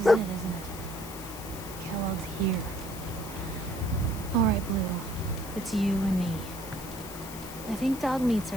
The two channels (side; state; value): left; noise; hiss, 13 dB below the sound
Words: it, isn't it? Kellogg's here. All right, Blue. It's you and me. I think dog meat's